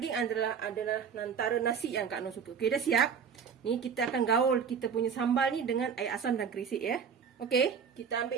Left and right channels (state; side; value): quieter; left; 6.8 dB